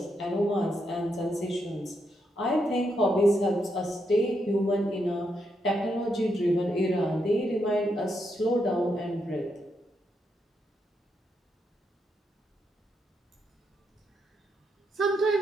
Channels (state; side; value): normal; both; correlation 0.81